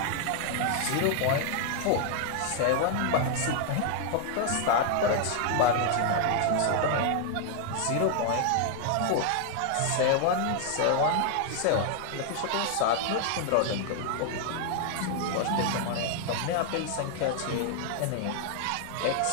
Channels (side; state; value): both; different; correlation 0.00